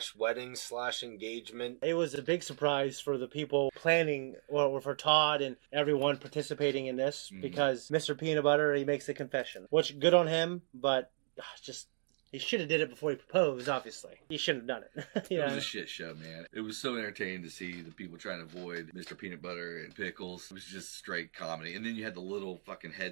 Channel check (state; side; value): silent; left; digital silence